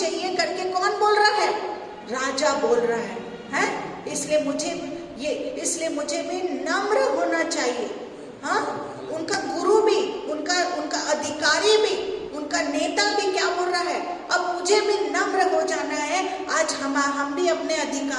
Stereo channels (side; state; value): both; identical; correlation 1.00